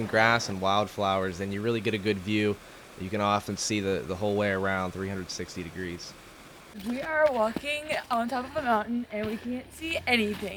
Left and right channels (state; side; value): identical; both; correlation 1.00